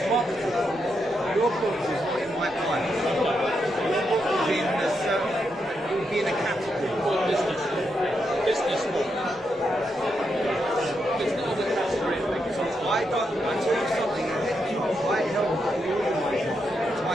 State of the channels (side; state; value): both; normal; correlation 0.82